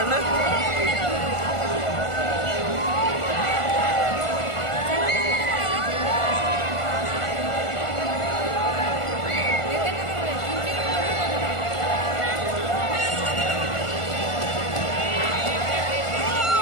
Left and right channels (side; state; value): right; late; 1.5 ms